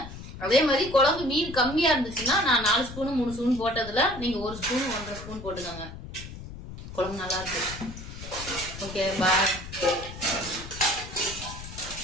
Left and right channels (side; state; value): left; noise; rumble, 12 dB below the sound